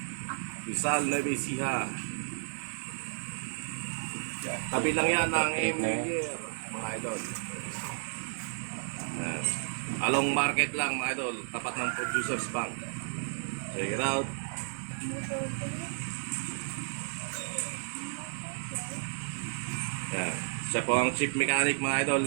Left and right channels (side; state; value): left; silent; 56 dB below the other